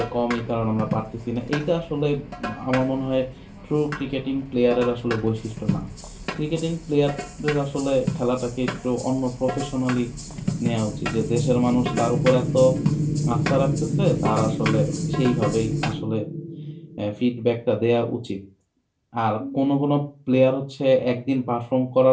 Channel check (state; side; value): identical; both; correlation 1.00